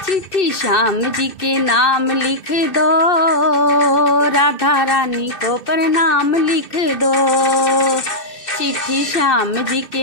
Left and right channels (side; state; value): right; late; 2.6 ms